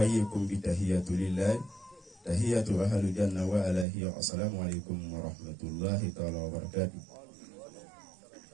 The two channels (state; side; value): drops out; left; at 3.9 s